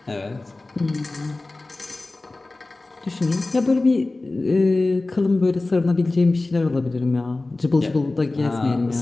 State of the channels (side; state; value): right; quieter; 3.1 dB